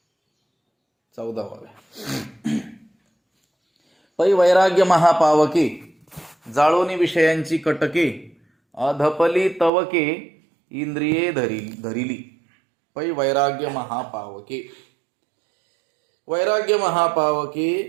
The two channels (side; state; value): left; drops out; at 9.7 s